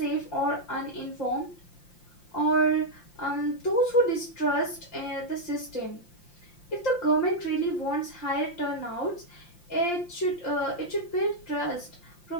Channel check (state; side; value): late; right; 5.8 ms